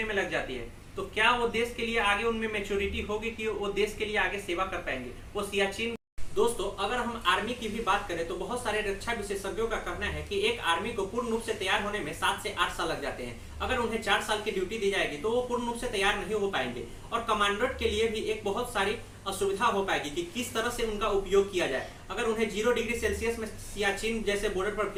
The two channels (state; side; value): identical; both; correlation 1.00